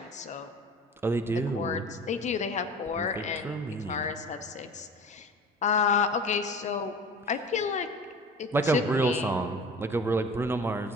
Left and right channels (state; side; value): normal; both; correlation 0.39